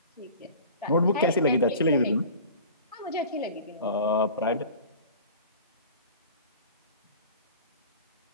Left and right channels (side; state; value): both; inverted; correlation -0.41